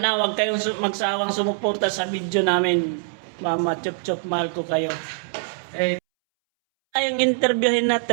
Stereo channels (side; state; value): left; silent; 63 dB below the other